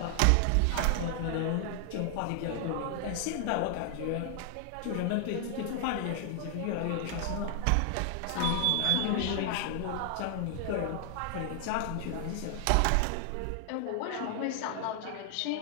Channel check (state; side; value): different; both; correlation 0.00